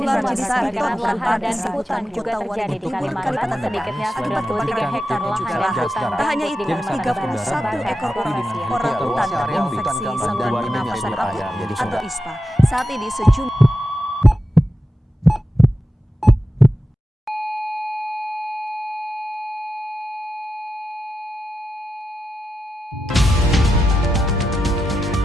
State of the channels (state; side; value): normal; both; correlation 0.90